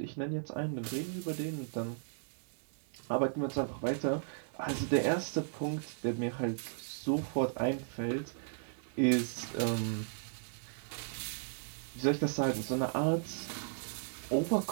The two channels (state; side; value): silent; left; 54 dB below the other